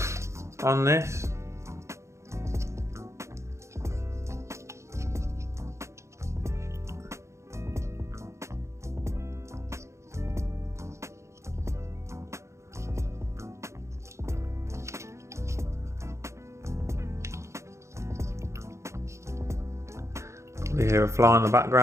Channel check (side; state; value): left; late; 0.14 ms